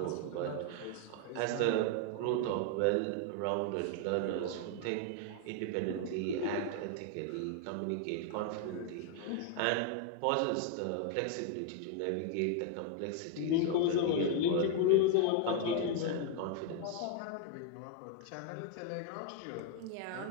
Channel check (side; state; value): both; different; correlation 0.00